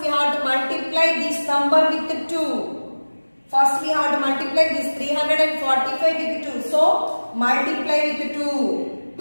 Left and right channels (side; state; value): both; inverted; correlation -1.00